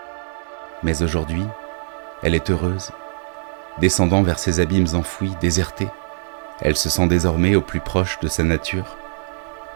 Mais aujourd'hui, elle est heureuse. Descendant vers ces abîmes enfouis, désertés, elle se sent désormais au plus proche de sa nature,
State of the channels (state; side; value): silent; left; digital silence